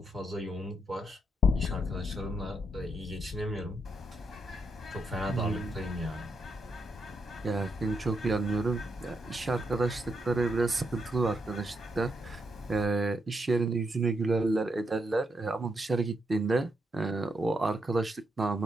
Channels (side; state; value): both; normal; correlation 0.80